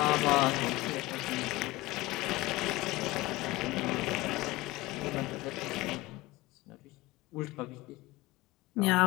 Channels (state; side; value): quieter; right; 19.9 dB